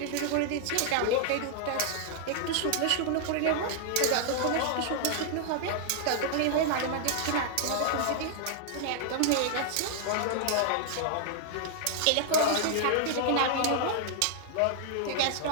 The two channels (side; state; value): both; different; correlation -0.01